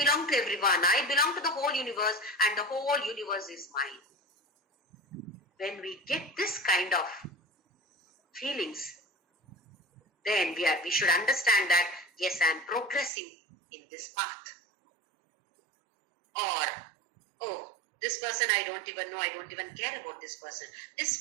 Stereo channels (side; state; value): left; drops out; at 13.1 s